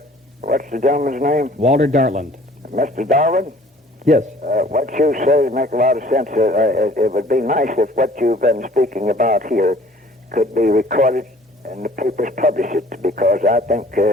What's the gentleman's name? Walter Dartland. Mr. Darwin? Yes. What you say makes a lot of sense. It would be nice if what you've been speaking about here could be recorded and the papers publish it, because I think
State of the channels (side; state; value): both; normal; correlation 0.53